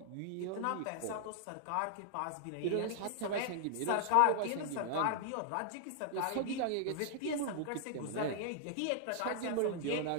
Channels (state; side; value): different; both; correlation -0.01